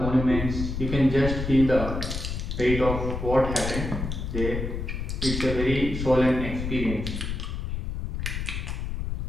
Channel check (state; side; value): noise; left; rumble, 4 dB below the sound